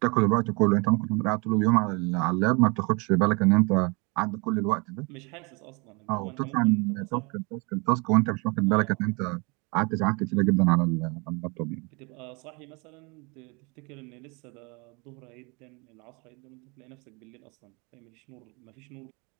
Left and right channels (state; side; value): quieter; left; 29.7 dB